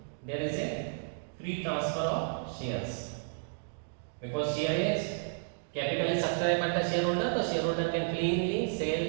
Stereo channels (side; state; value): left; silent; digital silence